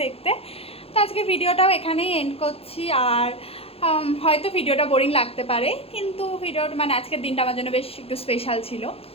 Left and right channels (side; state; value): right; late; 0.28 ms